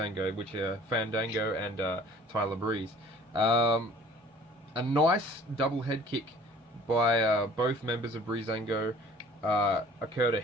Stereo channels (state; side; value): normal; both; correlation 0.51